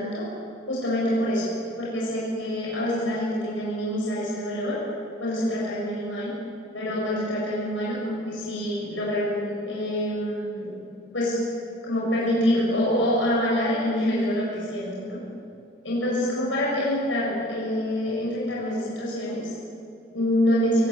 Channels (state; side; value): normal; both; correlation 0.48